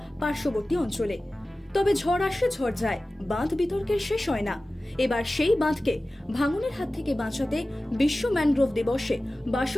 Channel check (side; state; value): both; normal; correlation 0.96